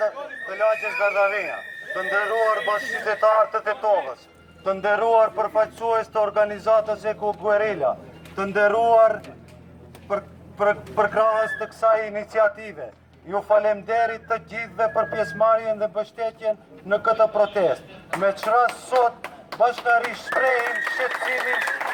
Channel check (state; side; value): identical; both; correlation 1.00